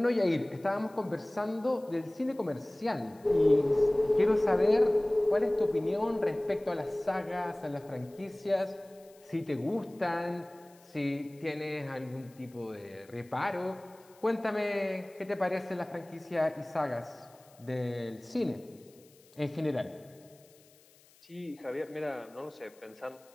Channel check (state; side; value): noise; left; hiss, 28 dB below the sound